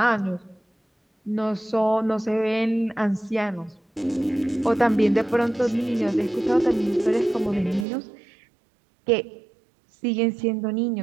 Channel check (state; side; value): drops out; left; at 7.9 s